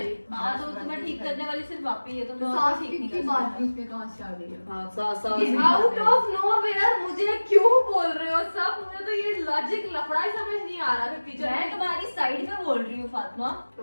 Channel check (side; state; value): both; inverted; correlation -1.00